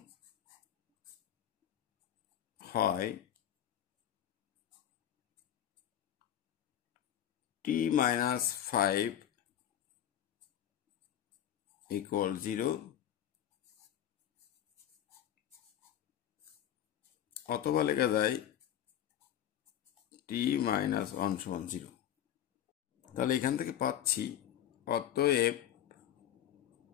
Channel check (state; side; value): quieter; right; 10.7 dB